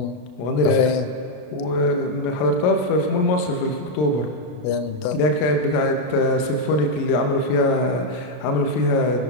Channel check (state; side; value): late; right; 33 ms